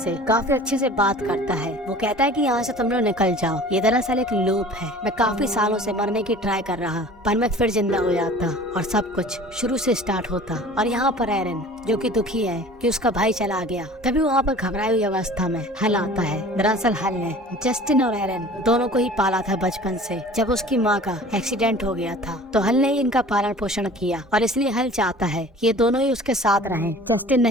काफी अच्छे से बात करता है। वो कहता है कि यहाँ से तुम लोग निकल जाओ, ये दरअसल एक लूप है। मैं काफी सालों से मरने की ट्राई कर रहा, पर मैं फिर जिंदा हो जाता और सब कुछ शुरू से स्टार्ट होता। और यहाँ पर एरन जो कि दुखी है कि उसका भाई चला गया, तभी वहाँ पर घबराई हुई अवस्था में हल आता है। दरअसल हल ने जस्टिन और एरन दोनों को ही पाला था बचपन से। जब उसकी माँ का एक्सीडेंट हो गया था तो हल ने ही इनका पालन पोषण किया और इसलिए हल चाहता है कि ये दोनों ही उसके साथ रहें। जस्टिन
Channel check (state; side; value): normal; both; correlation 0.44